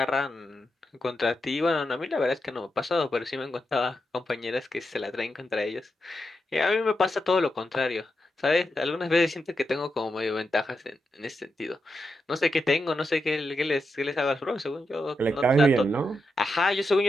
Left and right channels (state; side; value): normal; both; correlation 0.86